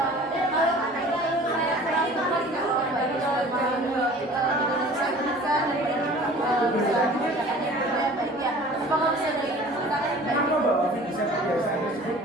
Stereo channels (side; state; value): both; normal; correlation 0.45